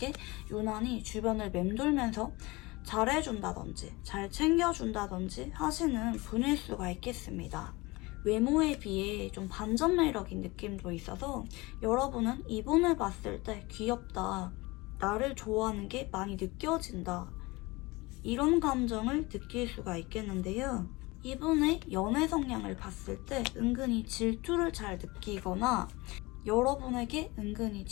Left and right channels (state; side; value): quieter; right; 23.1 dB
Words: 유난히 주변을 맴돌면서 잘해준다든지 잘 챙겨준다든지 하시는 분일 수가 있겠습니다. 외모에 비해 좀 반전 매력인 느낌도 있어서 여러분은 이분을 봤을 때 귀엽다, 나를 좋아하는 게 많이 느껴진다 이런 감정을 느낄 수가 있겠는데요. 이분의 연애 성향을 봤을 때 은근히 질투를 잘 느끼거나 여러분에게 은근히